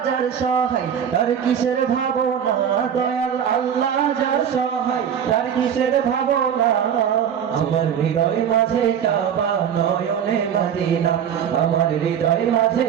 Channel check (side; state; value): left; quieter; 8.6 dB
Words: যার সহায় তার কিসের ভাবনা, দয়াল আল্লাহ যার সহায় তার কিসের ভাবনা। আমার হৃদয় মাঝে কাবা নয়নে মদিনা, আমার হৃদয় মাঝে